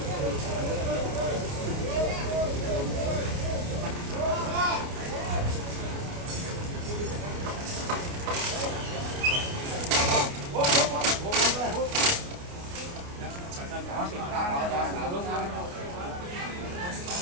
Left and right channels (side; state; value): left; late; 28 ms